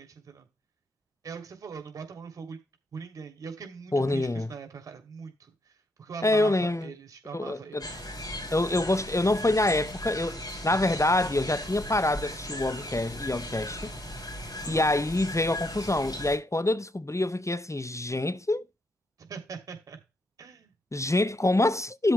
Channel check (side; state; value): both; normal; correlation 0.74